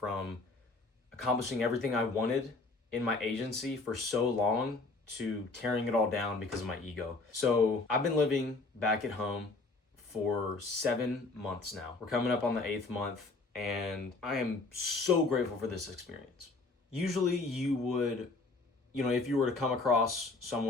accomplishing everything I wanted in my agency for so long to tearing it all down because of my ego. So I've been living back at home for 7 months now. We're coming up on the 8th month, and I am so grateful for this experience. Usually you would, if you were to come across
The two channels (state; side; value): quieter; right; 3.6 dB